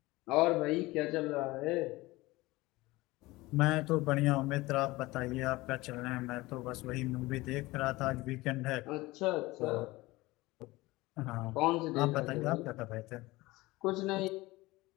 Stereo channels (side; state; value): right; quieter; 20.3 dB